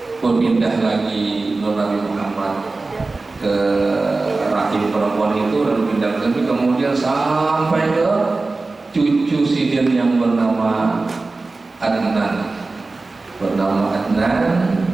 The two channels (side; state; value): left; quieter; 3.5 dB